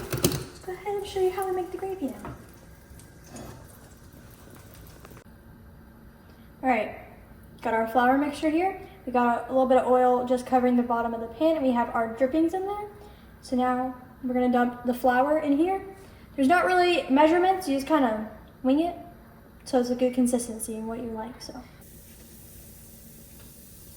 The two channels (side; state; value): both; identical; correlation 1.00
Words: ahead and show you how we make the gravy now. All right, got our flour mixture here. We got a little bit of oil just covering the bottom of the pan, and we have our drippings in there. So now we're gonna dump the flour in here. There's not really measurements, you just kind of wing it. So it's a good consistency and what you like, so.